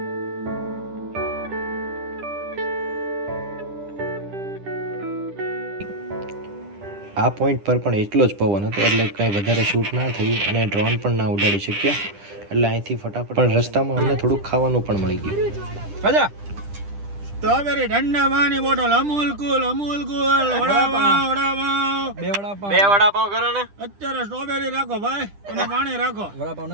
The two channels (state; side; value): late; left; 10 ms